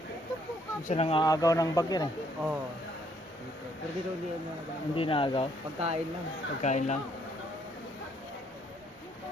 Isa nang aagaw ng bagyo eh. Oo. Pero dito hindi ano na Hindi na agaw. pagkain lang. Pagkain lang.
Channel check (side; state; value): both; normal; correlation 0.68